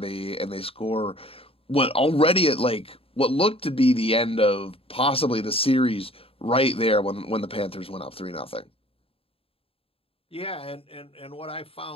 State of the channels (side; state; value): right; late; 0.27 ms